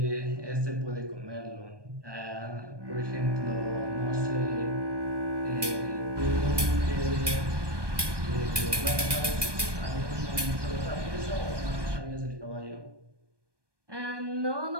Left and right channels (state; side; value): late; left; 1.2 ms